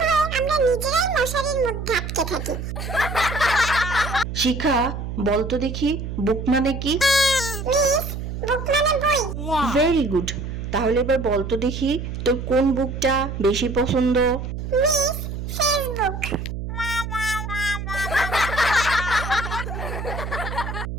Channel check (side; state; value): right; noise; hum, 6 dB below the sound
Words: ভয়ে আমরা নিজেরাই মশারির মধ্যে আটকে থাকি। শিখা বলতো দেখি, বুক মানে কি? মিস, বুক মানে বই। Very good. তাহলে এবার বলতো দেখি, তোর কোন বুকটা বেশি পছন্দ? Miss, Facebook.